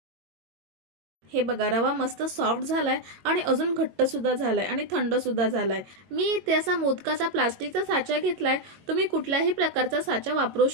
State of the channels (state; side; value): late; left; 22 ms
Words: हे बघा रवा मस्त सॉफ्ट झालाय आणि अजून घट्ट सुद्धा झालाय आणि थंड सुद्धा झालाय। मी इथे असा मोदकाचा प्लास्टिकचा साचा घेतलाय, तुम्ही कुठल्याही प्रकारचा साचा वापरू